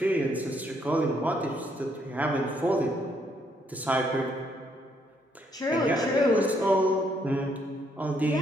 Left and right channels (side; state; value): both; normal; correlation 0.72